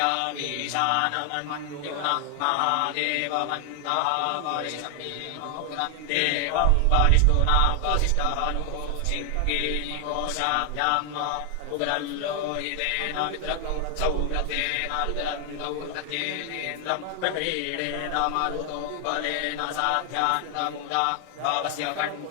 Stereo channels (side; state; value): both; different; correlation 0.00